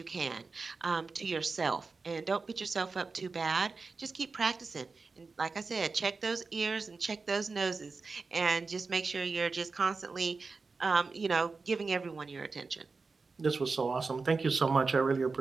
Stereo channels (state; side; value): quieter; left; 4.3 dB